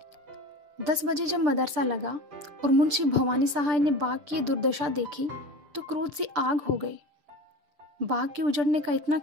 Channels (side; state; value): left; late; 6.8 ms